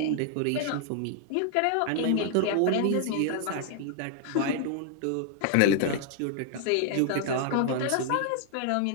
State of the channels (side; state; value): both; different; correlation 0.00